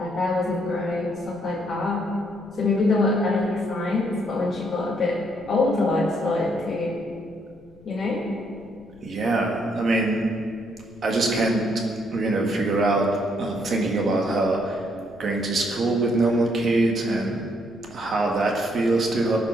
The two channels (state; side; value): noise; left; rumble, 26 dB below the sound